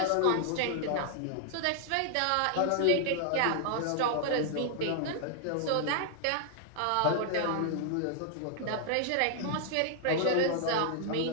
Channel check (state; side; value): different; both; correlation 0.00